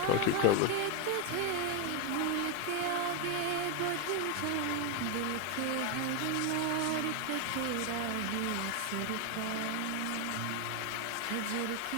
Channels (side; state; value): both; different; correlation 0.01